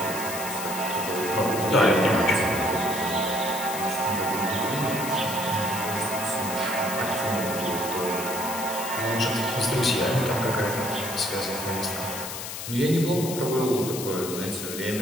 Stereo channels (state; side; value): noise; left; hiss, 7 dB below the sound